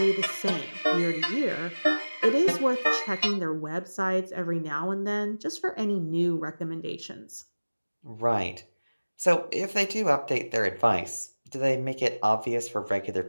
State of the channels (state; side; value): inverted; both; correlation -1.00